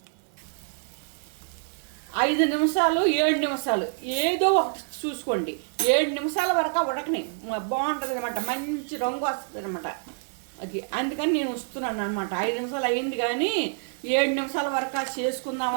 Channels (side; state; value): left; silent; digital silence